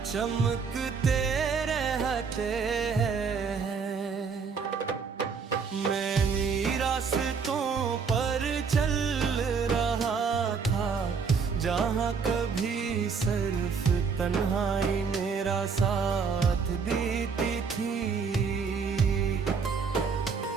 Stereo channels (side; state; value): left; quieter; 5.6 dB